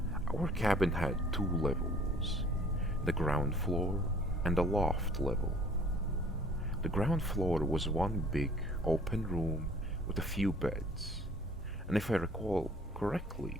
our cabin had two levels, the ground floor and the loft level. The ground floor was one big, open room with a few beds, and if I recall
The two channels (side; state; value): both; normal; correlation 0.53